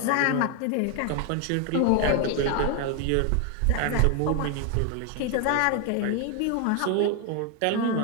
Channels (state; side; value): different; both; correlation 0.01